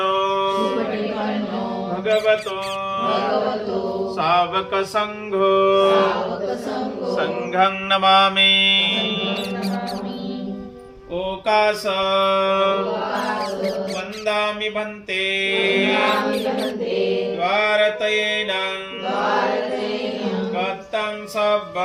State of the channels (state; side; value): identical; both; correlation 1.00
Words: भगवतो सावक संघो संघं नमामि ओकास वन्दामि भन्ते द्वारतयेन गतं